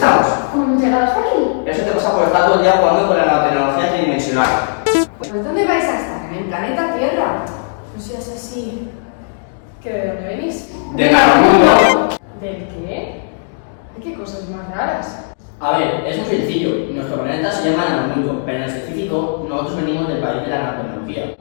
¿Cómo hemos llegado hasta aquí? Eso te pasa por estar todo el día jugando con la nanotecnología tridimensional. Pues ¿dónde vais a estar? En el planeta Tierra. No seas así. ¿Que de dónde venís? ¡De Nanomundo! ¿Del qué? Ay, qué cosas más raras. A ver, es muy sencillo. Nuestro planeta se llama Nanomundo, pero en específico nosotros venimos del país de la nanotecnología.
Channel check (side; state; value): right; silent; digital silence